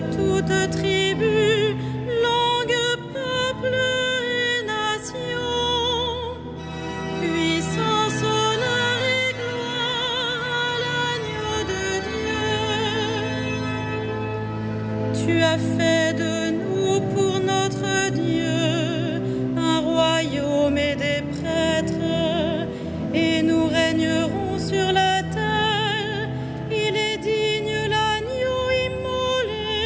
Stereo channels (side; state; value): both; identical; correlation 1.00